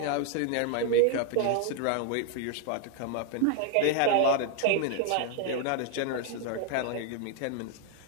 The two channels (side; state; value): both; different; correlation 0.00